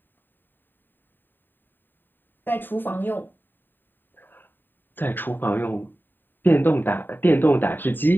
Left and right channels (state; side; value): late; right; 0.093 ms